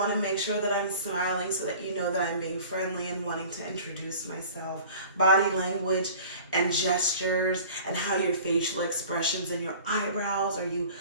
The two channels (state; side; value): inverted; both; correlation -0.44